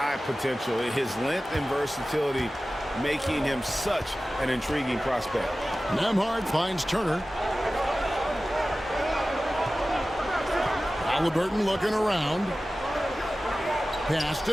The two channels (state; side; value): normal; both; correlation 0.96